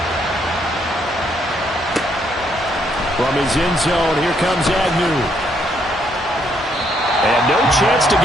From his end zone, here comes Agnew. And no chance to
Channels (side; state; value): both; normal; correlation 0.72